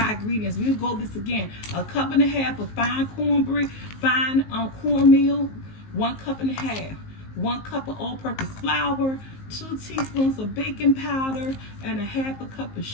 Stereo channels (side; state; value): right; late; 19 ms